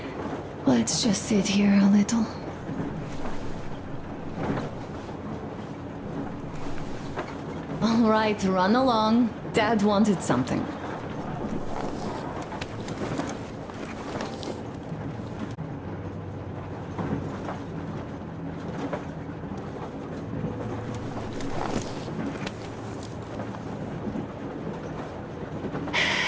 Let's just sit here a little. All right, run along. Dad wanted something.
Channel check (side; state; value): both; identical; correlation 1.00